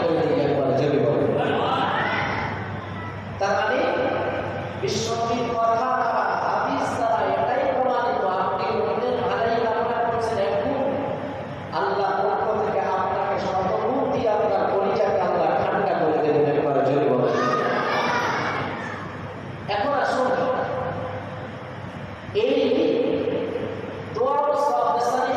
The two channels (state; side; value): identical; both; correlation 1.00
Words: করে দিয়ে একবার জমি বলেন। তার মানে বিশ্বনবীর কথা বা হাদিস দ্বারা এটাই প্রমাণিত, আপনি অন্যের ভালাই কামনা করছেন, এখন আল্লাহ পক্ষ থেকে আপনাকে শতগুণ দিয়ে আপনার পরিচয়কে আল্লাহ ঠান্ডা করে দেবেন একবার জমি বলেন। এখন আসুন, এই দোয়া ও সওয়াবেসানি